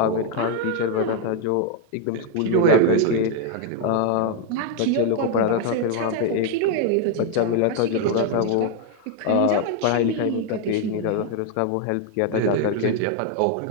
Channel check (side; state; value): both; different; correlation 0.00